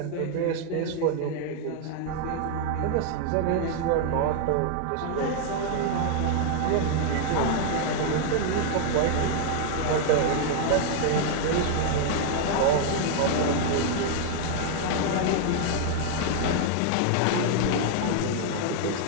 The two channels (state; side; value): different; both; correlation 0.00